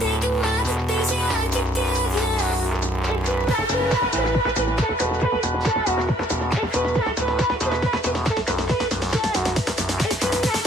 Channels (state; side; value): normal; both; correlation 0.66